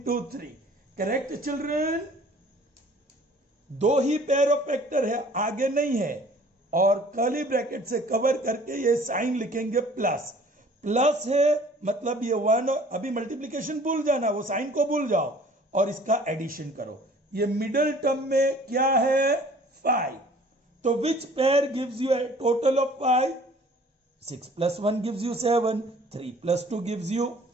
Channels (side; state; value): both; normal; correlation 0.51